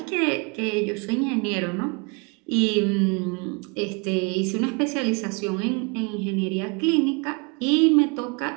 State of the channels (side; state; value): left; quieter; 31.6 dB